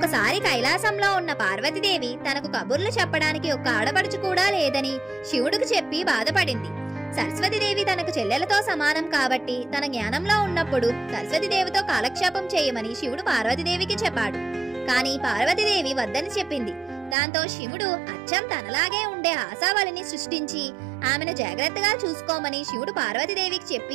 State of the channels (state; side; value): drops out; left; at 17.2 s